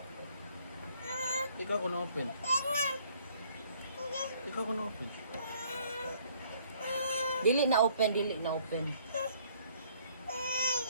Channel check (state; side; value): inverted; both; correlation -0.62